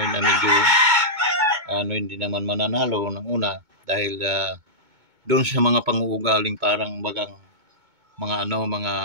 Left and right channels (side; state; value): left; late; 2.2 ms